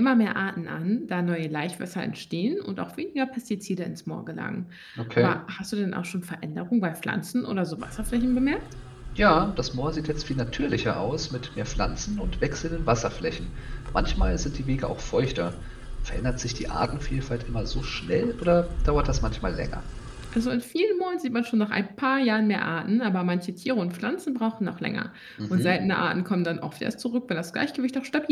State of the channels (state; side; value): identical; both; correlation 1.00